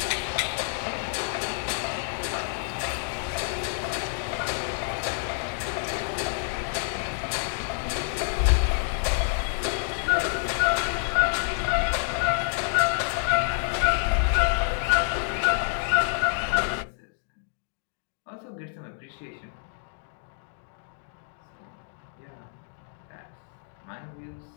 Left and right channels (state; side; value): silent; right; 59 dB below the other